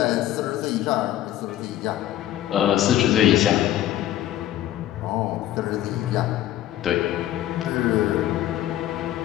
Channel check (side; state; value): right; quieter; 13.1 dB